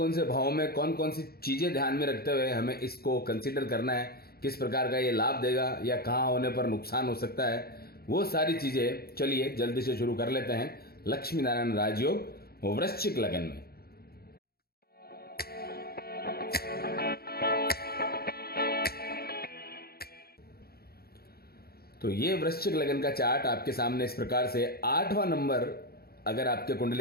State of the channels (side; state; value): right; late; 0.45 ms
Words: से भावों में कौन कौन सी चीजें ध्यान में रखते हुए हमें इसको कंसीडर करना है, किस प्रकार का ये लाभ देगा या कहाँ होने पर नुकसान हो सकता है, वो सारी चीजें चलिए जल्दी से शुरू कर लेते हैं। लक्ष्मी नारायण राजयोग वृश्चिक लग्न में। तो ये वृश्चिक लग्न का चार्ट आपके सामने इस प्रकार से 8वां नंबर अगर आपके